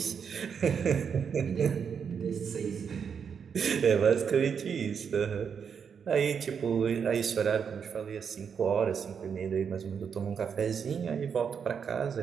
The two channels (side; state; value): left; quieter; 6.9 dB